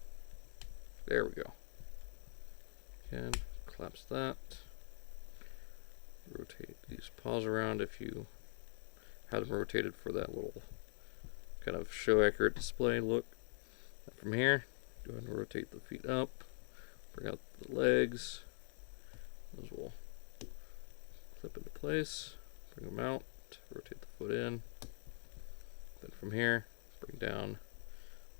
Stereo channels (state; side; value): silent; right; digital silence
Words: There we go. Again, collapse that. Rotate these paws around if you had them rotated for that little kind of show accurate display look. And from here, go ahead and rotate the feet up, bring out the legs. Those will clip into place, bring them out, rotate the foot in. Then from here, bring down